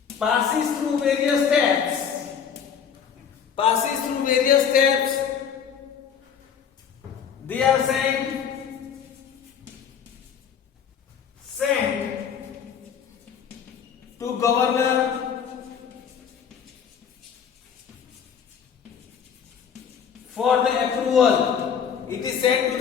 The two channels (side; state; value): right; quieter; 7.5 dB